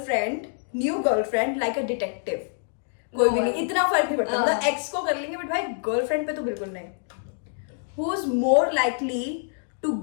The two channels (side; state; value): right; silent; digital silence